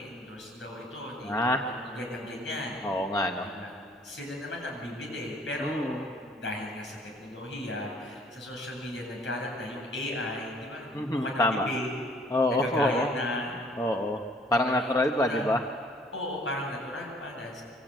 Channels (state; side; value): normal; both; correlation 0.58